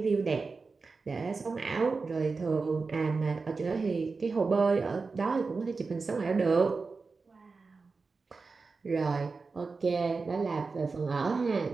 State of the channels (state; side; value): quieter; left; 4.3 dB